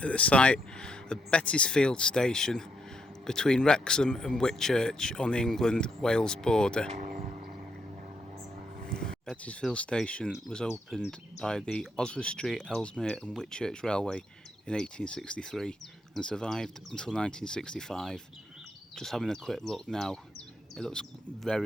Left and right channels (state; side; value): normal; both; correlation 0.77